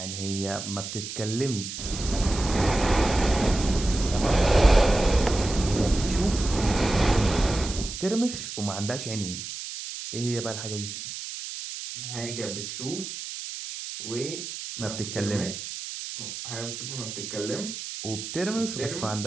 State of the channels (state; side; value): noise; right; hiss, 8 dB below the sound